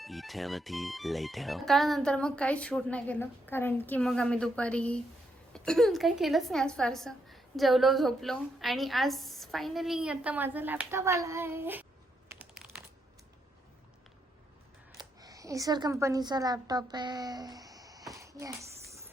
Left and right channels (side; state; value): both; normal; correlation 0.78